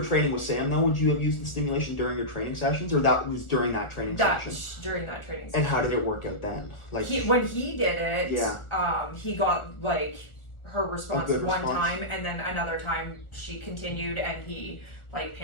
training with Sam, though, would you have used the stimulation during your training sessions, or that was during that training session? During that training session. And how did it work out then? When he did it, he got her response one time, and then another time she continued, and he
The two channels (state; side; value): late; right; 1.4 ms